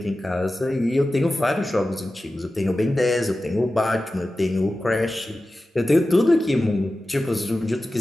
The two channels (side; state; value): both; normal; correlation 0.94